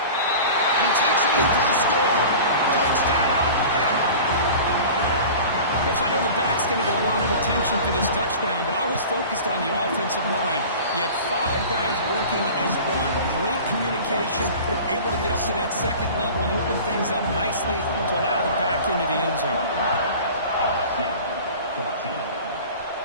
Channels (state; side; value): inverted; both; correlation -0.39